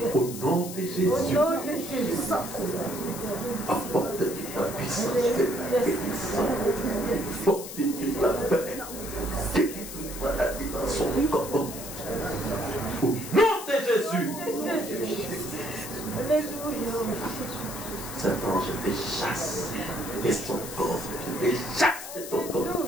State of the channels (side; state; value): left; noise; hiss, 10 dB below the sound